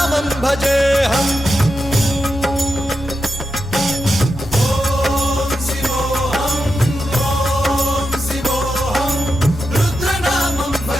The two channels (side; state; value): both; normal; correlation 0.88